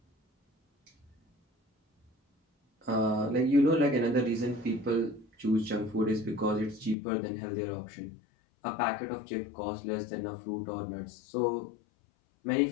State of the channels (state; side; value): drops out; right; at 7.0 s